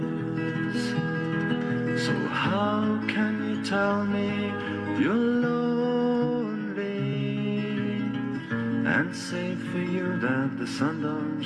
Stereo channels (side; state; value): both; identical; correlation 1.00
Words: So how can you tell me you're lonely and say for you that the sun don't